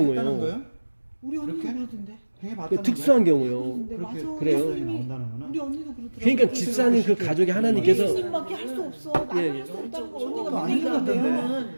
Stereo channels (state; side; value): inverted; both; correlation -1.00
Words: 경우예요. 거예요? 우리 언니도 이렇게? 그러던데. 행해 그 봤다는 특수한 경우요. 그러던데 그렇게 맞아. 그래요? 예수님이 나온다는 거는? 우리 언니도 그러더라고. 그러니까 집사님 그 가족이 하나님께서 예수님밖에 할 수 없어. 나는 예, 할 수 없다는 거 저거 언니가 아닌 것 믿는다며. 같던데.